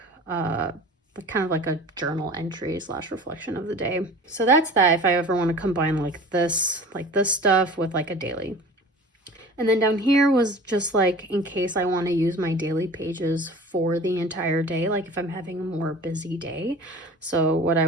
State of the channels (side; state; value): both; normal; correlation 0.41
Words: kind of like a journal entry / reflection of the day. So that's that if I ever want to combine like this stuff with like a daily. And then down here was just like in case I want to use my daily pages for the entire day, like if I'm having a more busy day. So what